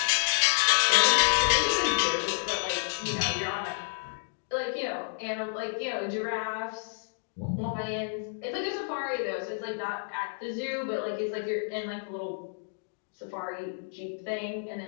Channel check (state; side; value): silent; right; digital silence